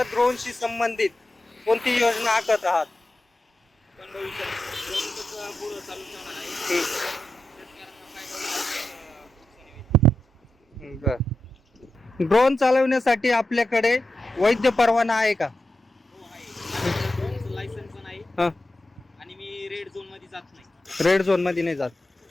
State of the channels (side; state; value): both; normal; correlation 0.90